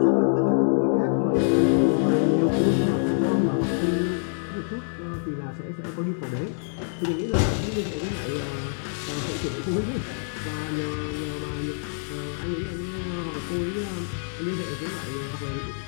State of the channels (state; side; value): silent; right; digital silence